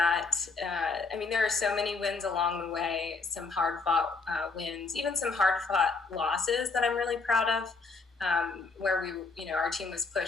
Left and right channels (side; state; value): right; quieter; 4.1 dB